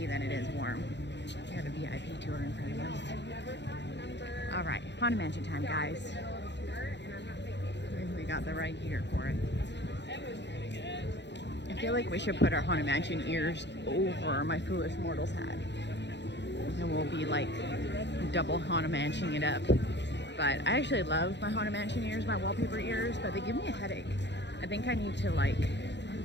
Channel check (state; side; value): late; right; 0.51 ms